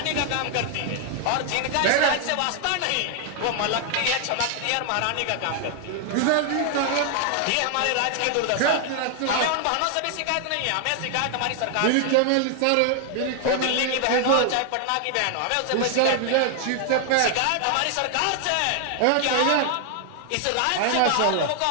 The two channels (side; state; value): both; different; correlation 0.00